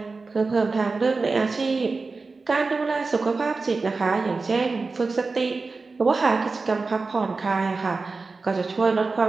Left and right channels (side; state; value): left; quieter; 4.0 dB